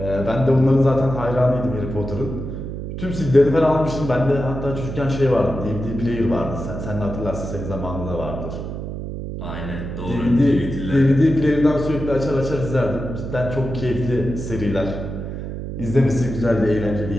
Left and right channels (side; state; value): right; noise; hum, 7 dB below the sound